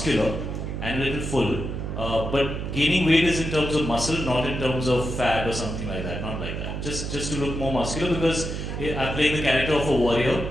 and a little full. But gaining weight is in terms of muscle, not in terms of fat or something like that. Not like that. Just to look more muscular, because I'm playing the character of a warrior.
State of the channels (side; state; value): right; noise; hum, 5 dB below the sound